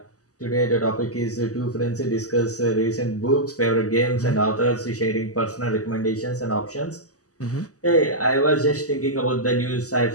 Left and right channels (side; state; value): right; late; 0.66 ms